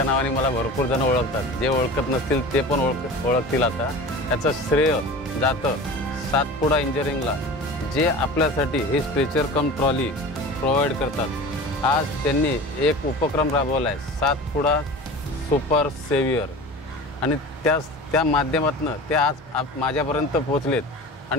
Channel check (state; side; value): normal; both; correlation 0.36